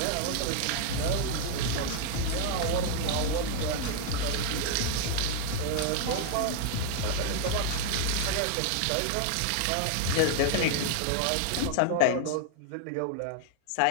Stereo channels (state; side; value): different; both; correlation -0.01